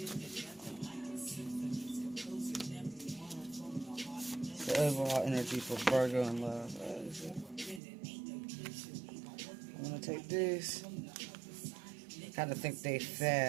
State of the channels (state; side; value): drops out; left; at 7.8 s